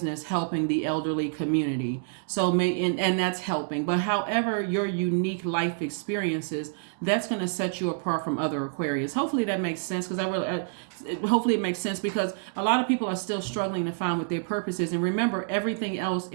helping the elderly community. So and that's helping. But however your unique life experiences, that's going to set you apart from other Aquarius. Hopefully that makes sense, because hopefully it makes sense, because a lot of people are still struggling to find what their purpose is. And remember, everything else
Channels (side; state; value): left; silent; digital silence